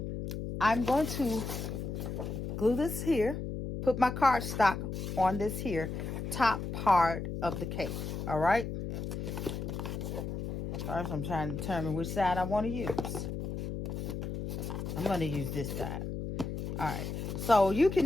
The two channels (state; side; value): noise; left; hum, 5 dB below the sound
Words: I'm going to glue this here. Put my cardstock on this here top part of the cake. All right. First, I'm trying to determine which side I want to use. I'm going to use this side. All right. So you